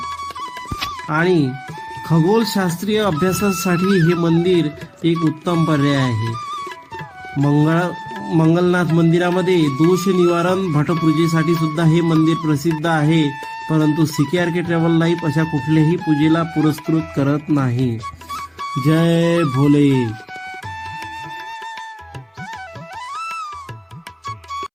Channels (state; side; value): identical; both; correlation 1.00